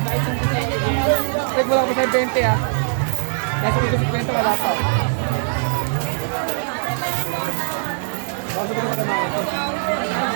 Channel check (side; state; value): left; silent; digital silence